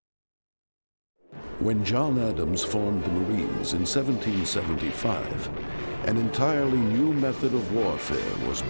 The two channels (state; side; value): inverted; both; correlation -1.00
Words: When John Adams formed the Marines in 1775, an entirely new method of warfare was